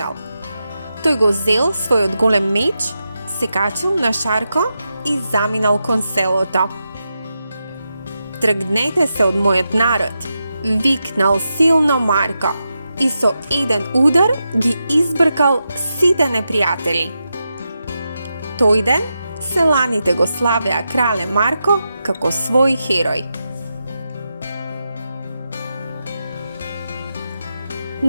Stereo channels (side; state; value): both; inverted; correlation -0.88